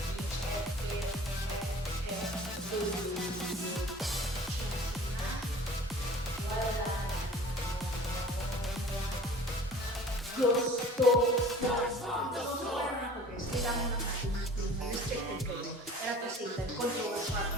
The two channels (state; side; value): normal; both; correlation 0.45